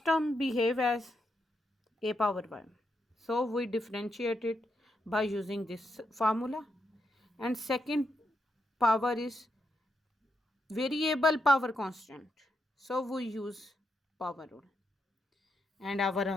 term behave as a power y. So we differentiate it by using this formula. And second power is variable power constant. So we use power rule. And our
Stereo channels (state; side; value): normal; both; correlation 0.82